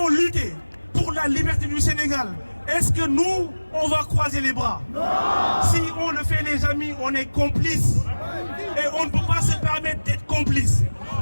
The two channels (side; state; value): both; inverted; correlation -1.00